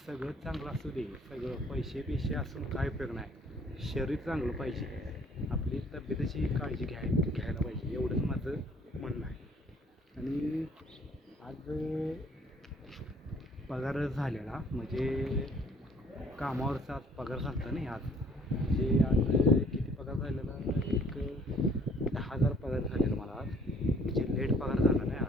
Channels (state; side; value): normal; both; correlation 0.59